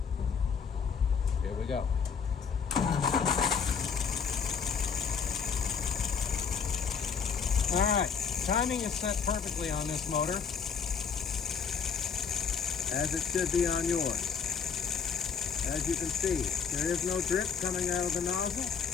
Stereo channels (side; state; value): right; quieter; 6.3 dB